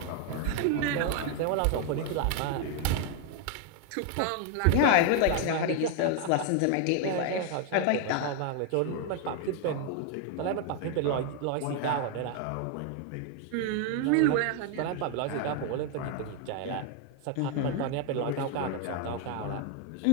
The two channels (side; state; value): both; different; correlation 0.01